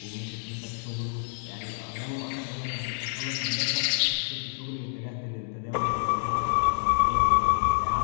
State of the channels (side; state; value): right; silent; digital silence